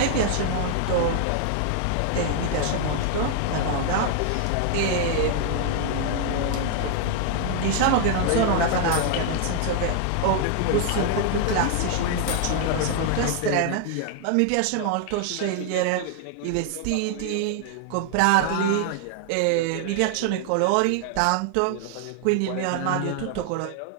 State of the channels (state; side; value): different; both; correlation 0.00